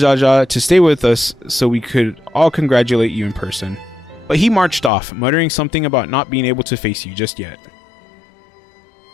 to stay with us so we could all congratulate you in person, but he marched off, muttering something about not being able to face you just yet.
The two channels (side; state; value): right; drops out; at 4.9 s